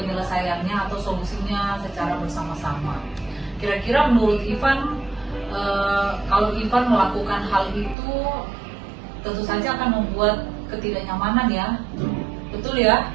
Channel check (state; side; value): drops out; left; at 8.0 s